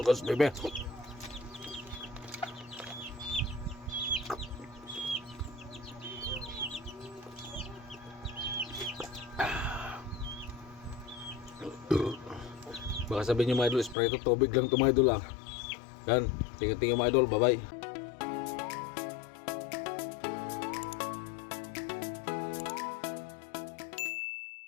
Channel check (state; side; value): drops out; right; at 14.0 s